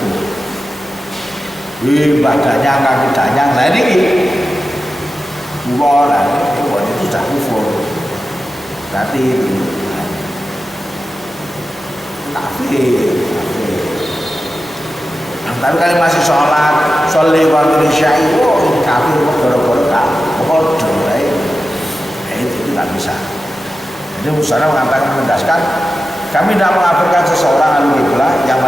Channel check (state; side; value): normal; both; correlation 0.93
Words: Badannya kaki danyang, nah ini kufur, itu sudah kufur. Berarti itu kafir. Tapi kalau masih sholat, sholli wa syai, ini kafir gara-gara bodoh, itu tidak bisa. Jadi Musara mengatakan menegaskan, kami tidak mengkafirkan seseorang ahli kiblah yang